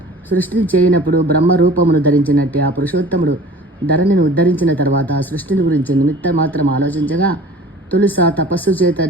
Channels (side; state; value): both; normal; correlation 0.44